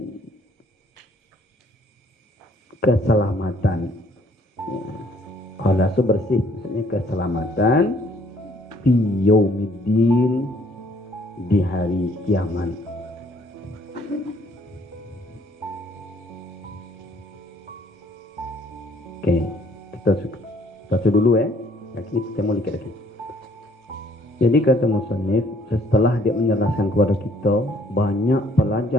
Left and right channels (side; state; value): both; normal; correlation 0.62